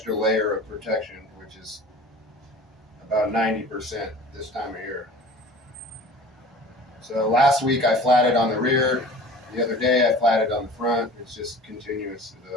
layer of protection, which is about 90% this time of year. So last week I flatted on the rear. The other day I flatted on the front. It's just continuous. It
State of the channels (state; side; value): normal; both; correlation 0.42